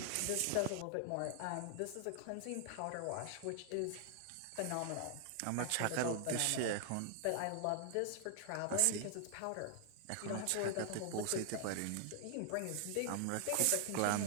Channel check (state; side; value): different; both; correlation 0.00